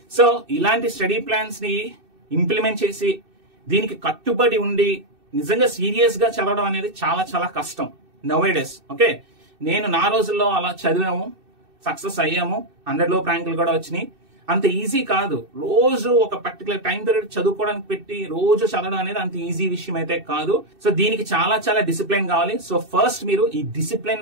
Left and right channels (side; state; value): left; late; 2.6 ms